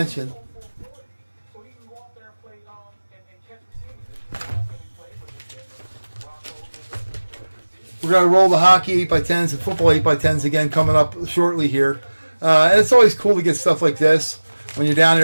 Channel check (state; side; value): inverted; both; correlation -1.00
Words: We're going to roll the hockey 8x10s and football 8x10s again coming up shortly here. And it's always cool to get stuff like this when you're down